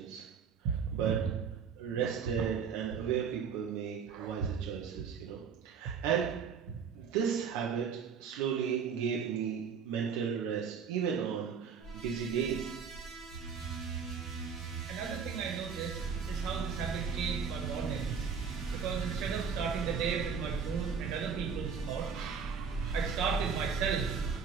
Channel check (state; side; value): quieter; left; 6.4 dB